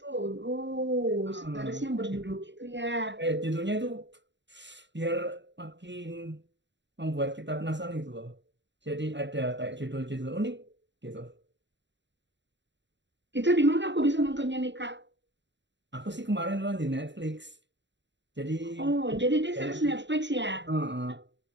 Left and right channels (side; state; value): left; late; 0.52 ms